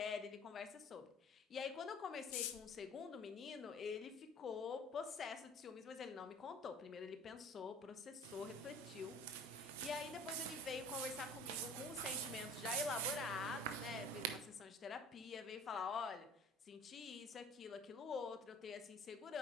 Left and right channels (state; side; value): normal; both; correlation 0.44